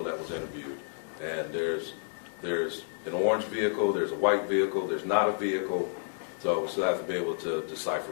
that was interviewed. And there's an orange vehicle, there's a white vehicle, there's not a vehicle. So we still have to be able to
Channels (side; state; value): right; silent; digital silence